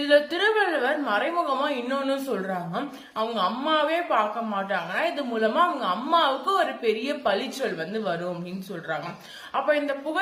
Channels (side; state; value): both; identical; correlation 1.00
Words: திருவள்ளுவர் மறைமுகமா இன்னொன்னு சொல்றாங்க, அவங்க அம்மாவே பார்க்க மாட்டாங்கன்னா இது மூலமா அவங்க அம்மாவுக்கு ஒரு பெரிய பழிச்சொல் வரும் அப்படின்னு சொல்றாங்க. அப்ப இந்த